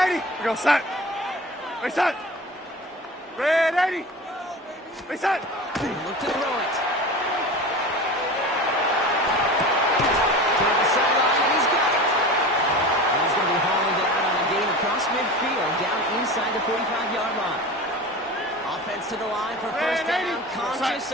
80. We go set. We set. Red 80. We set. They look to throw it. Across midfield, down inside the 45-yard line. Offense to the line for 1st down, conscious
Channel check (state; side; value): normal; both; correlation 0.33